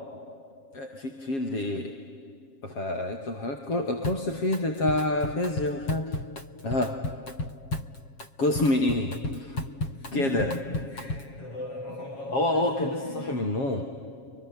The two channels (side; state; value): right; late; 7.4 ms